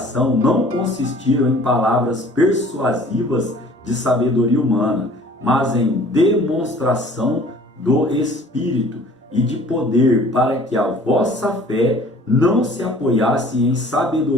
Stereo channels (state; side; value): normal; both; correlation 0.50